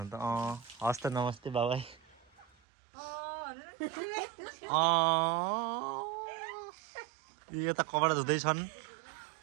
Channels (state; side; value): drops out; left; at 2.5 s